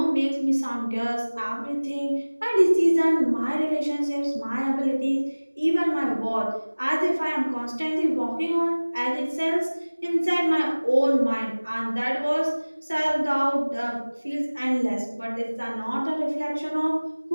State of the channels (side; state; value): both; inverted; correlation -1.00